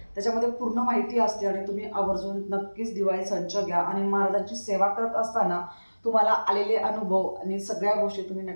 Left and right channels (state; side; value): inverted; both; correlation -1.00